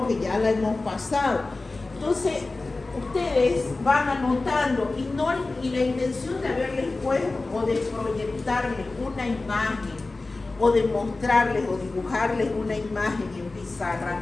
que ya la hemos pasado. Entonces, ustedes van anotando y la intención de haberles puesto o de proyectarles una imagen o de mostrarles o dibujarles una imagen en pizarra,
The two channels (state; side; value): quieter; right; 3.4 dB